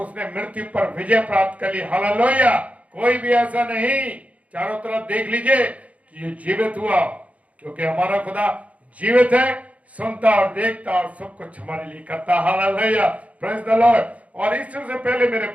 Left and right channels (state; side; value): late; left; 0.067 ms